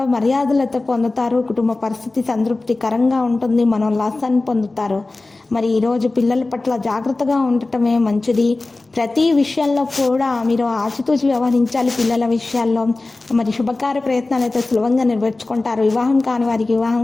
మర్యాదలతో పొందుతారు. కుటుంబ పరిస్థితి సంతృప్తికరంగా ఉంటుంది. మనోల్లాసాన్ని పొందుతారు. ఈరోజు పిల్లల పట్ల జాగ్రత్తగా ఉండటమే మంచిది. ప్రతి విషయంలో కూడా మీరు ఆచితూచి వ్యవహరించాలి. పిల్లల విషయాల్లో శుభకార్య ప్రయత్నాలు అయితే సులభంగా నెరవేర్చుకుంటారు. వివాహం కాని వారికి వివాహం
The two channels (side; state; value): right; quieter; 3.2 dB